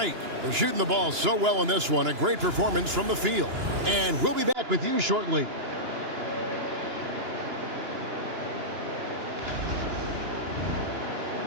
They're shooting the ball so well in this one. A great performance from the field. And we'll be back with you shortly.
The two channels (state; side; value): late; left; 2.9 ms